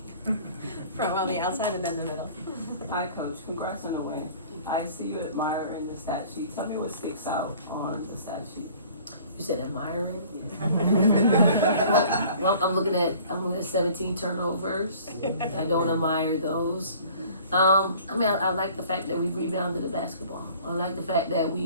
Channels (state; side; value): inverted; both; correlation -0.50